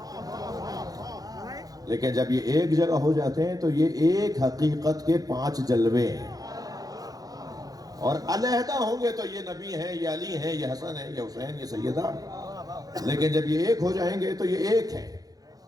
لیکن جب یہ ایک جگہ ہو جاتے ہیں تو یہ ایک حقیقت کے 5 جلوے ہیں، اور علیحدہ ہوں گے تو یہ نبی ہیں، یہ علی ہیں، یہ حسن ہیں، یہ حسین، یہ سیدہ، لیکن جب یہ ایک ہو جائیں گے تو یہ ایک ہے۔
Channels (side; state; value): left; late; 0.18 ms